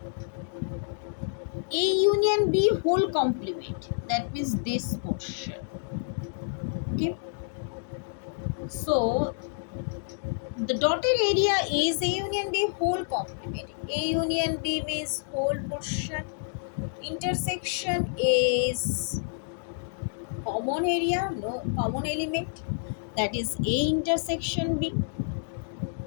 A union B whole complement, that means this portion. Okay, so the dotted area is A union B whole complement. A union B means whole portion. Intersection is common area, no common element, that is A intersection B.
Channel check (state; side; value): silent; right; digital silence